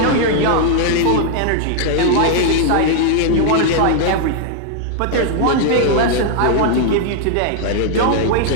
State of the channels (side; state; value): both; different; correlation 0.00